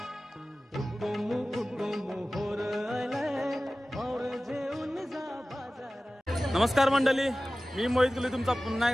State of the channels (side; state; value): both; normal; correlation 0.97